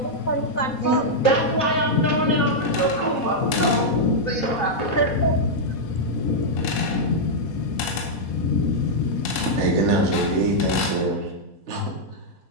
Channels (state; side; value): late; right; 4.1 ms